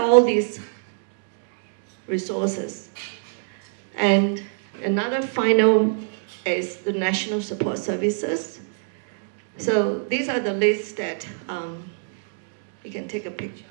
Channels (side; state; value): left; silent; digital silence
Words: all these resources. And another final is the National Support Services. So these are the lists that you can take a picture